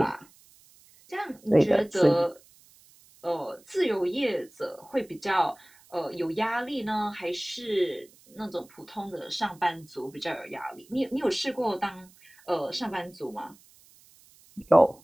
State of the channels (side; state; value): right; noise; hiss, 27 dB below the sound